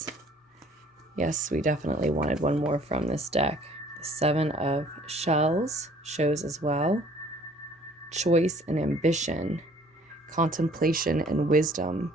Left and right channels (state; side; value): normal; both; correlation 0.56